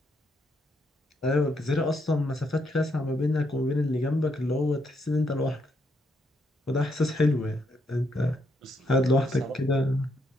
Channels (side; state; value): both; normal; correlation 0.76